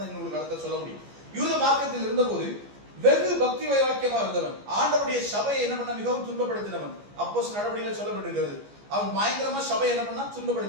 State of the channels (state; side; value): late; left; 14 ms